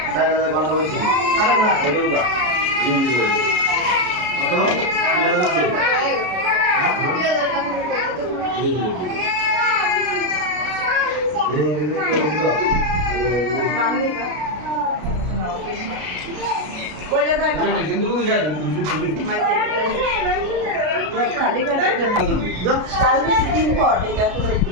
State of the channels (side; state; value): left; late; 33 ms